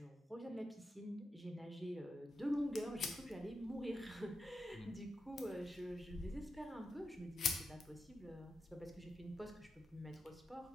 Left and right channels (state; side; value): normal; both; correlation 0.88